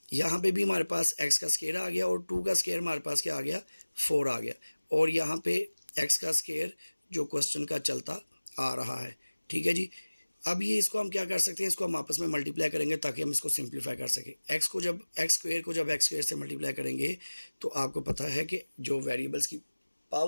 यहाँ पे भी हमारे पास एक्स का स्केयर आ गया और 2 का स्केयर हमारे पास क्या आ गया, 4 आ गया। और यहाँ पे एक्स का स्केयर जो क्वेश्चन का चलता आ रहा है। ठीक है जी, अब ये इसको हम क्या कर सकते हैं, इसको हम आपस में मल्टीप्लाई करेंगे ताकि हम इसको सिंप्लीफाई कर सकें। एक्स स्क्वायर को जब एक्स स्क्वायर से मल्टीप्लाई करेंगे तो आपको पता है कि जो वेरिएबल्स की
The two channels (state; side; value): inverted; both; correlation -1.00